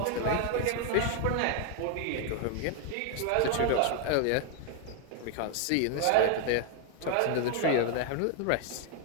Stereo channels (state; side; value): different; both; correlation 0.00